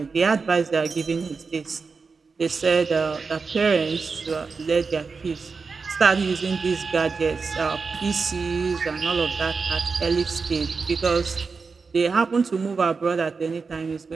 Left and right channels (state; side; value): quieter; left; 4.8 dB